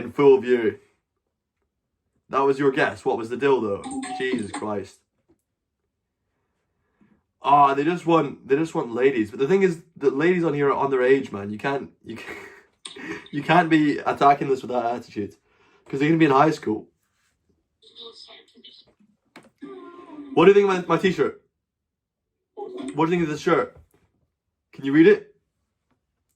full view. That was your guess. What was the dildo? Jesus Christ. Ah, they just want ladies. But the thing is, the ladies on here are underage, man. You can't be attacking this with that attitude, because they're gonna be in high school. What do you think of my t-shirt? What do you think of this shirt? Can you read it?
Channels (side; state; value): both; identical; correlation 1.00